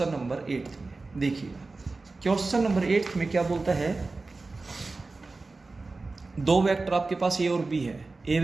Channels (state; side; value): quieter; left; 3.6 dB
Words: नंबर 8 में। देखिएगा क्वेश्चन नंबर 8 में क्या बोलता है, दो वेक्टर आपके पास ए और बी है। ए